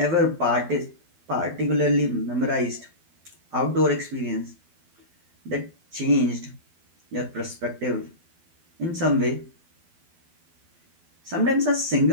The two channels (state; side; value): late; left; 12 ms